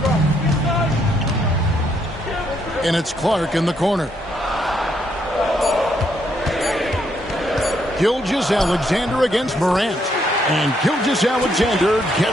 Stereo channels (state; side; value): normal; both; correlation 0.74